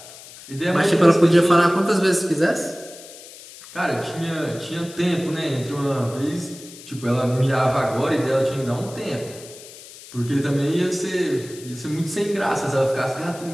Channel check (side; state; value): left; noise; hiss, 17 dB below the sound